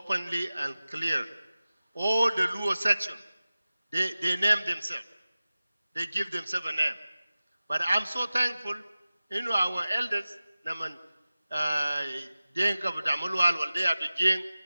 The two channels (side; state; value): both; inverted; correlation -0.96